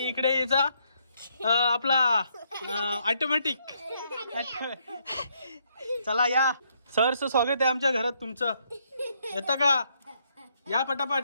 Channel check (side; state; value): both; inverted; correlation -0.73